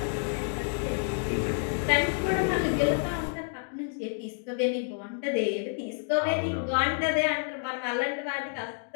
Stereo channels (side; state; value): right; silent; 59 dB below the other